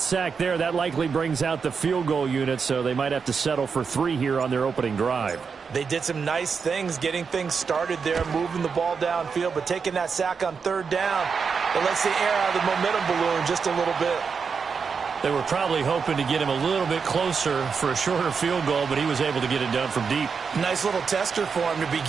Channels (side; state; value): left; quieter; 5.7 dB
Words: there, that likely brings out the field goal unit, so they might have to settle for 3 here on their opening drive. They did some nice things getting things started there, moving the ball downfield, but taking that sack on 3rd down, it lets the air out of the momentum balloon just a little bit. They were probably hoping to get him a little bit closer for a shorter field goal, but he was able to get it done from deep. Nice little tester for him to